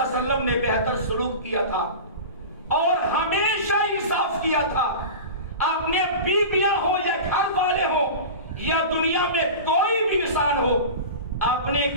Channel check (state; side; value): inverted; both; correlation -0.31